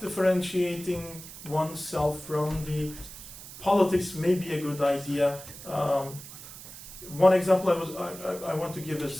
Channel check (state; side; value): noise; right; hiss, 14 dB below the sound